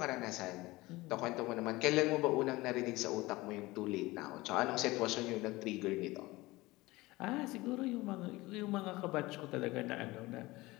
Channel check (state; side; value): quieter; right; 20.4 dB